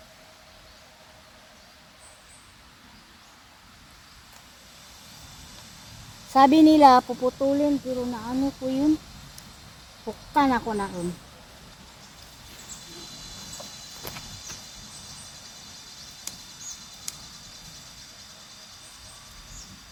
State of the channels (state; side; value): identical; both; correlation 1.00